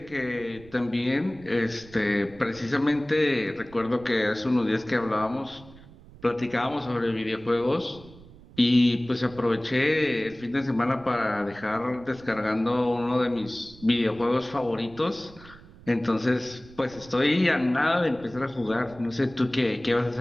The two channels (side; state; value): right; noise; rumble, 21 dB below the sound